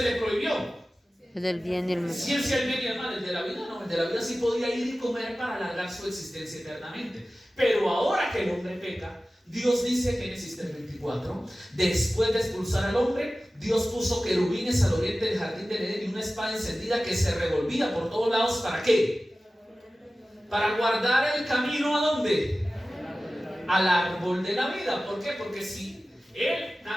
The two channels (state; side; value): normal; both; correlation 0.96